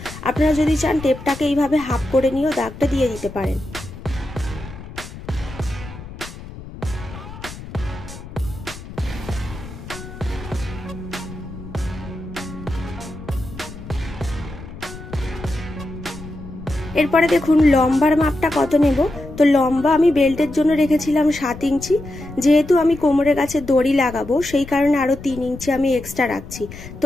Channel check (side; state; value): left; noise; rumble, 13 dB below the sound